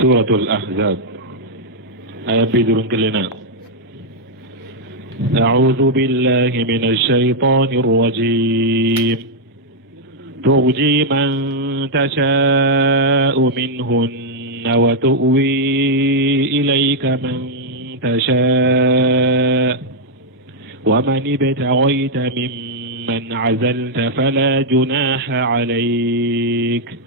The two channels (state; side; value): normal; both; correlation -0.03